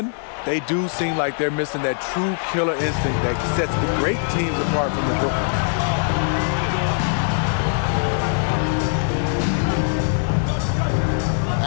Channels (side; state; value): right; silent; digital silence